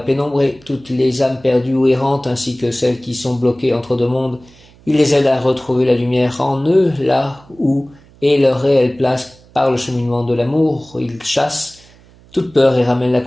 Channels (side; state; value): right; noise; hum, 27 dB below the sound